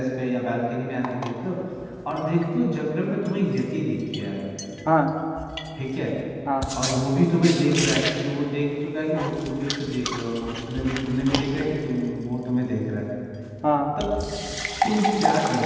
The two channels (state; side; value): identical; both; correlation 1.00